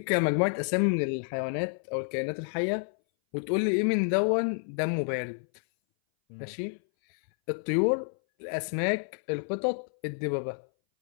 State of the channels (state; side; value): silent; right; 59 dB below the other